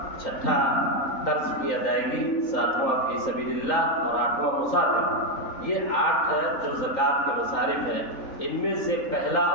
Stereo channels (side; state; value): right; late; 3.9 ms